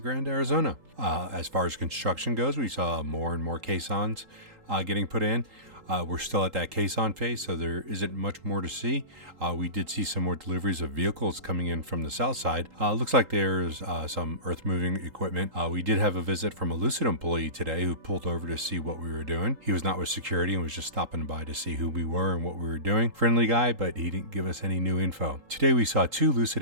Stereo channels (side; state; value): left; late; 3.8 ms